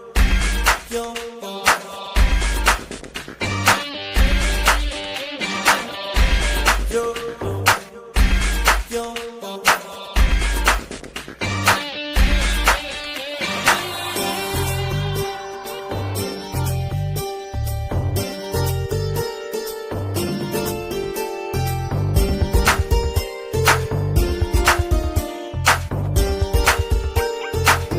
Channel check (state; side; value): identical; both; correlation 1.00